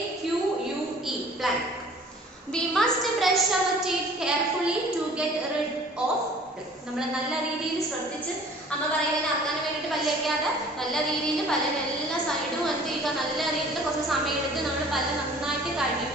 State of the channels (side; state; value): both; normal; correlation 0.50